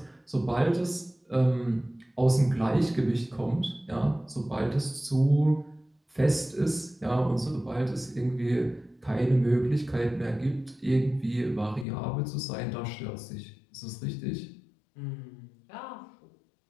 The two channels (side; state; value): right; drops out; at 11.9 s